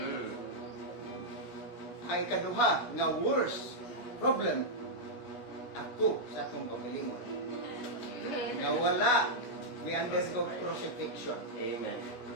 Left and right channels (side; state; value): right; late; 16 ms